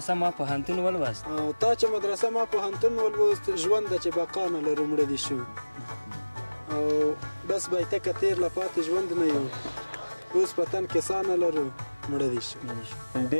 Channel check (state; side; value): inverted; both; correlation -1.00